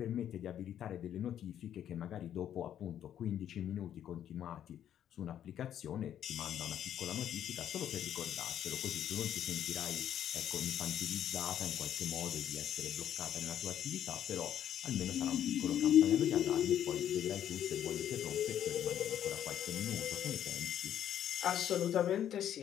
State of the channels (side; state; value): right; quieter; 10.4 dB